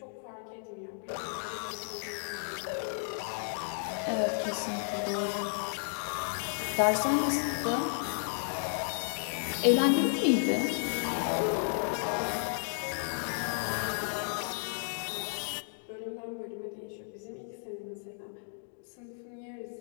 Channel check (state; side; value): silent; right; digital silence